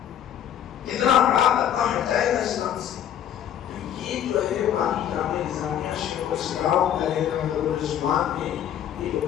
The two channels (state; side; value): quieter; right; 10.1 dB